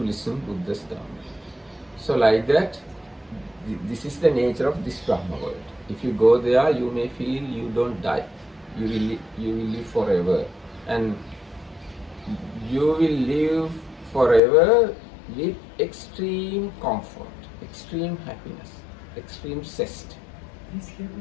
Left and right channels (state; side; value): drops out; right; at 14.4 s